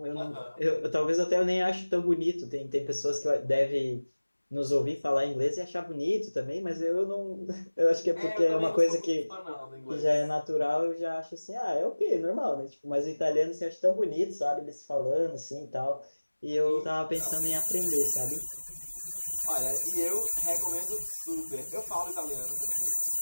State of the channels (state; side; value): inverted; both; correlation -1.00